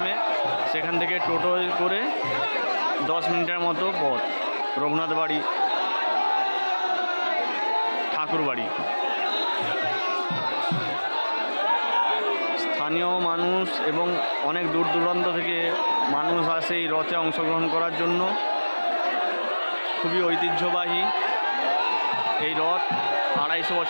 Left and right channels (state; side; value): inverted; both; correlation -1.00